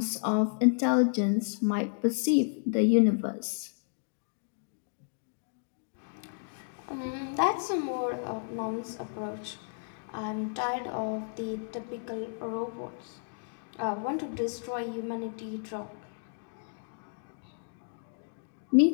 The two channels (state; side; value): silent; right; digital silence